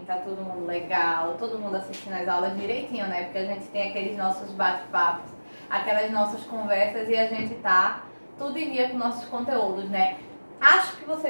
Tá todo mundo legal? Todo mundo assistindo as aulas direitinho, né? Porque a gente tem aqueles nossos bate-papos, aquelas nossas conversas e a gente tá tudo em dia com nossos conteúdos, né? Acho que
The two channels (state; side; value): inverted; both; correlation -1.00